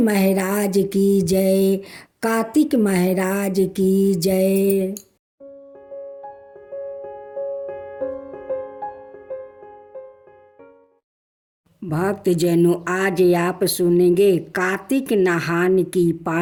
की जय, कार्तिक महाराज की जय। भक्तजनों, आज आप सुनेंगे कार्तिक नहान की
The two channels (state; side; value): identical; both; correlation 1.00